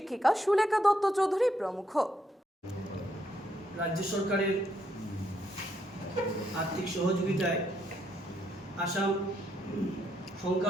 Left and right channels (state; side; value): normal; both; correlation 0.75